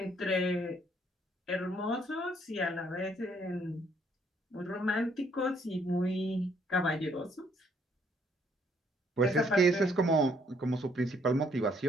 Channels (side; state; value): both; normal; correlation 0.66